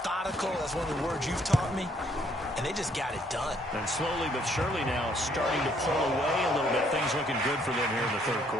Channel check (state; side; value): normal; both; correlation 0.67